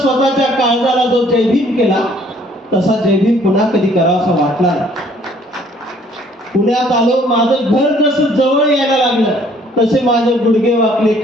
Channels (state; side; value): normal; both; correlation 0.60